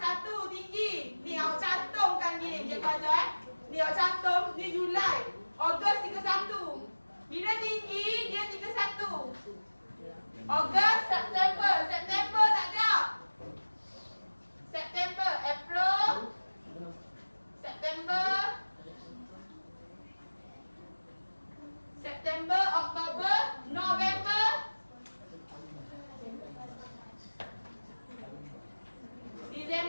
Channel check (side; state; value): both; inverted; correlation -1.00